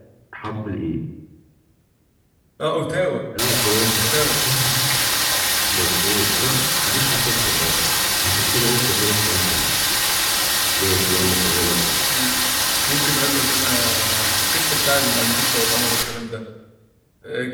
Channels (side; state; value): both; identical; correlation 1.00